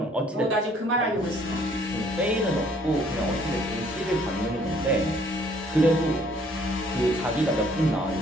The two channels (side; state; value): both; normal; correlation 0.61